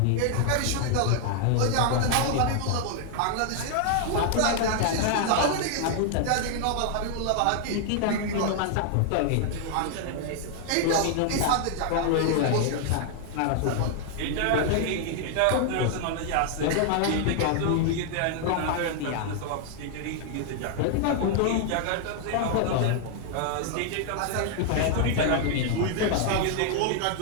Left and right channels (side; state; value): both; different; correlation 0.00